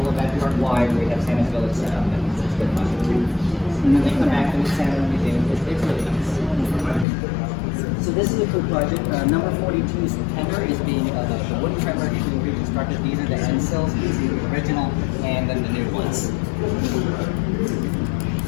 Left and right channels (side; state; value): right; drops out; at 7.1 s